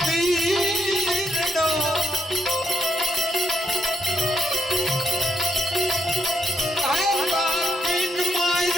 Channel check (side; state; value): both; normal; correlation 0.79